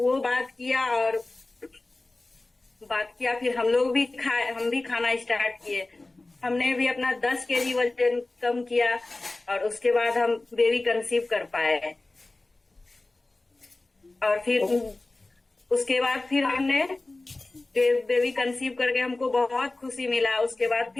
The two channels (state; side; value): quieter; right; 3.0 dB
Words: बात किया, फिर हम लोग भी हम भी खाना स्टार्ट किए। हमने भी अपना 10 kg वजन कम किया, और उसके बाद हम बेबी कंसीव कर पाए। और फिर उसके बाद फिर हमने बेबी कंसीव करके हमको बहुत खुशी मिला। उसके बाद